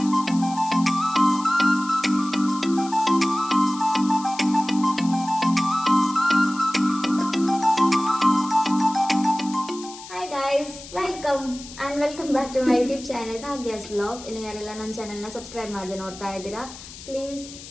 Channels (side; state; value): left; noise; hiss, 15 dB below the sound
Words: welcome back to my YouTube channel Bhagya's vlog. ಇನ್ನು ಯಾರೆಲ್ಲ ನನ್ನ ಚಾನೆಲ್ನ ಸಬ್ಸ್ಕ್ರೈಬ್ ಮಾಡದೆ ನೋಡ್ತಾ ಇದ್ದೀರಾ ಪ್ಲೀಸ್